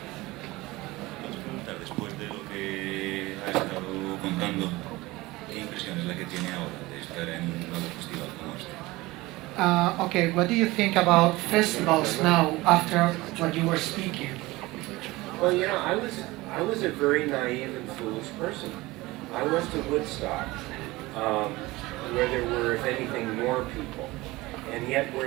Después de lo que ha estado contando, ¿qué impresión es la que tiene ahora de estar en un nuevo festival como este? Okay, what do you think about festivals now after what you were speaking? Well, you know, I was a very naive and foolish person. I went to Woodstock, where there were, if anything, more people, and yet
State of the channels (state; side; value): quieter; left; 20.4 dB